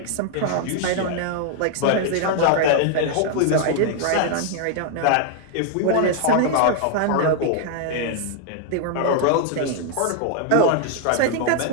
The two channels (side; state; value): both; different; correlation 0.00